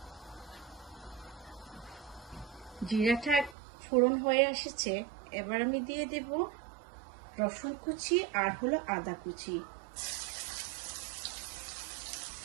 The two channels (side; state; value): left; drops out; at 3.6 s